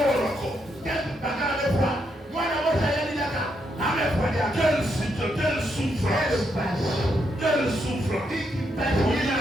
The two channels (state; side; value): normal; both; correlation 0.79